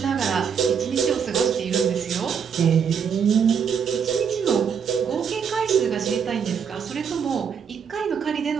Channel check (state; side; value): quieter; left; 7.1 dB